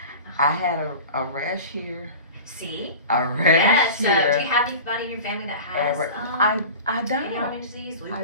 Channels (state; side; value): inverted; both; correlation -0.35